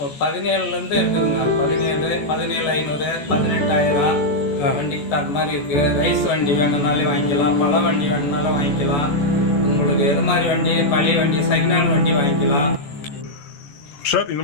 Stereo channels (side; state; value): right; late; 14 ms